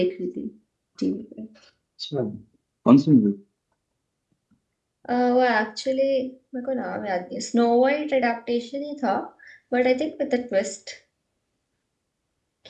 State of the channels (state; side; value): identical; both; correlation 1.00